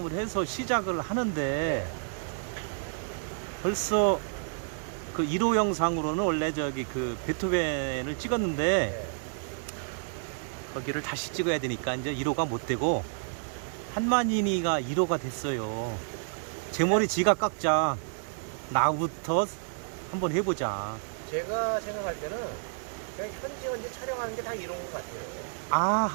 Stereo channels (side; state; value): left; silent; digital silence